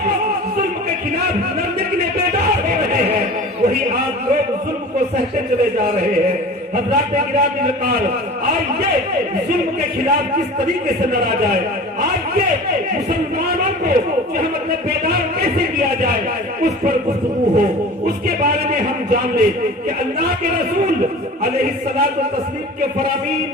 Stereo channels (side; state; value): both; normal; correlation 0.38